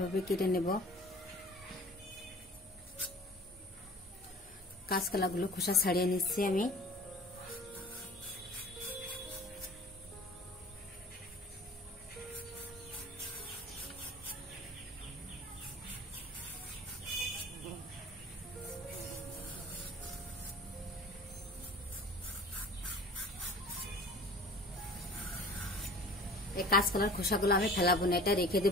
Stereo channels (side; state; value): both; normal; correlation 0.44